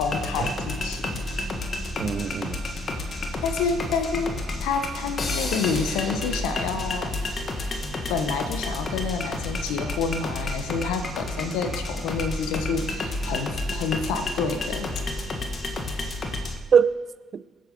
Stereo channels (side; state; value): both; normal; correlation 0.62